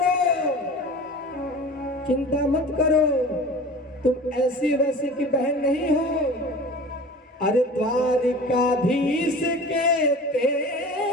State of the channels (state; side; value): normal; both; correlation 0.38